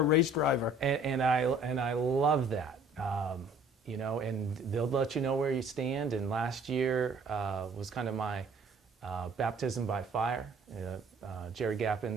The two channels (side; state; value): both; normal; correlation 0.55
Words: race driver. And I love that. And they'll let you know where you stand. And last year was kind of my baptism by fire. Jerry